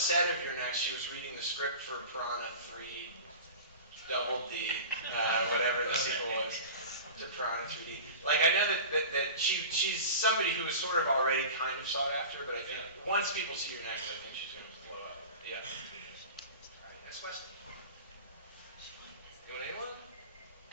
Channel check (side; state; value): both; inverted; correlation -0.34